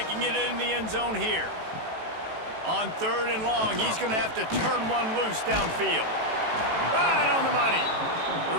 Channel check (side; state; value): left; late; 18 ms